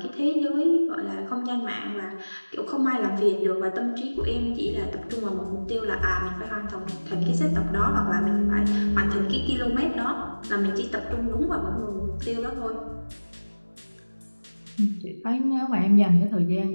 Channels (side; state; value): both; inverted; correlation -1.00